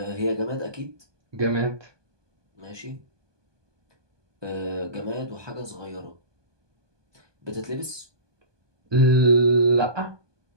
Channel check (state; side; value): late; left; 1.2 ms